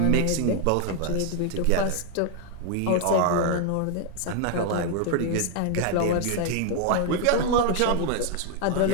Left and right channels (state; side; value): different; both; correlation 0.01